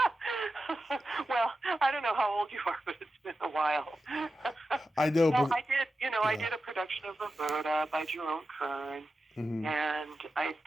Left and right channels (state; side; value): normal; both; correlation 0.91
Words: Well, I don't know how old you are, but it's been a while. I know, Well, but I yeah. did a production of Roberta by Jerome Kern, Mm-hmm. and I